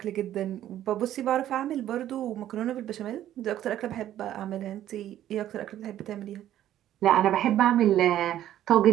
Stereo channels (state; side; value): quieter; left; 12.2 dB